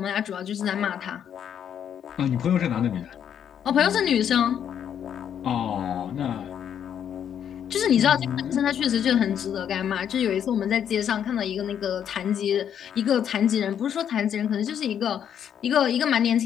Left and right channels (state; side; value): quieter; right; 9.0 dB